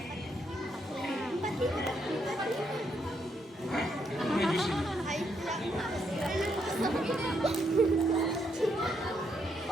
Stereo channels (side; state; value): both; normal; correlation 0.76